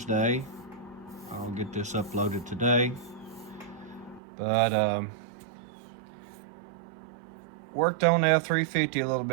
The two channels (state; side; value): drops out; left; at 4.2 s